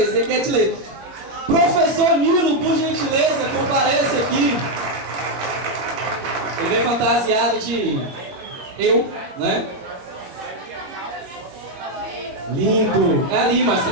ele quer te ler. Professor Nilo, por gentileza, compareça aqui. Ele vem fantasiado de eu, né? Lindo. É ali, mas você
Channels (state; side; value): late; left; 21 ms